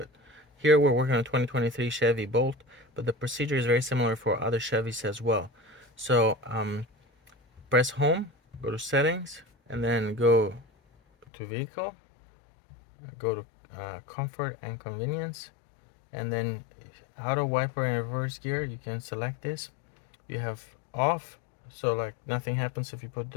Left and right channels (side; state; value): right; drops out; at 11.2 s